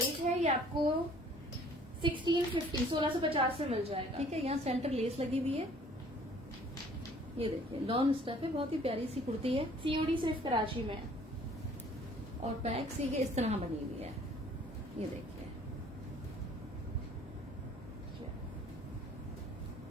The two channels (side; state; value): both; normal; correlation 0.55